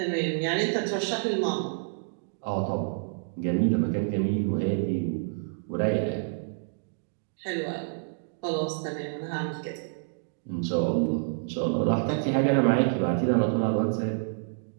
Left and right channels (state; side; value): silent; left; digital silence